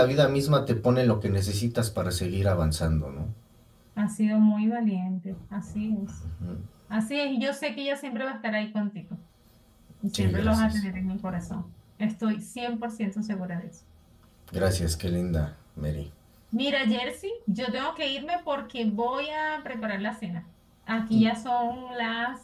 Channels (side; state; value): both; identical; correlation 1.00